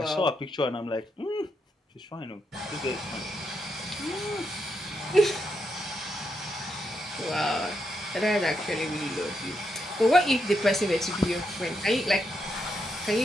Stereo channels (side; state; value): both; normal; correlation 0.81